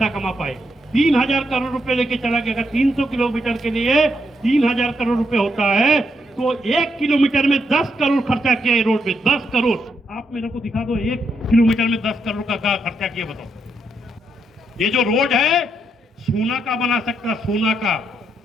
कमा पाए। 3000 करोड़ रुपए लेके चला गया। अगर 300 किलोमीटर के लिए 3000 करोड़ रुपए होता है तो 1 किलोमीटर में 10 करोड़ खर्चा किया है रोड पे, 10 करोड़। आप मेरे को दिखा दो 1 किलोमीटर में 10 करोड़ का खर्चा किया, बताओ। ये जो रोड है सोना का बना सकता, सोना का,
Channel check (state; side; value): normal; both; correlation 0.79